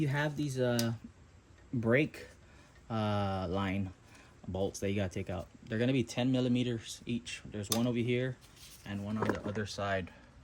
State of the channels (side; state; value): both; identical; correlation 1.00